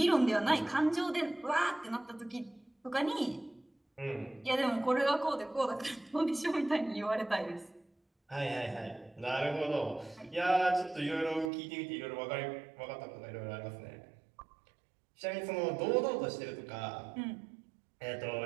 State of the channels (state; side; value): drops out; left; at 11.5 s